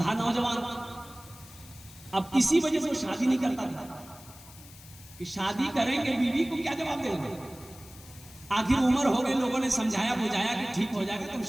नौजवान, अब इसी वजह से वो शादी नहीं करता था कि शादी करेंगे बीवी को क्या जवाब देंगे। आखिर उम्र हो गई, लोगों ने समझाया बुझाया कि ठीक हो जाएगा, तुम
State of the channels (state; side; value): noise; left; hiss, 20 dB below the sound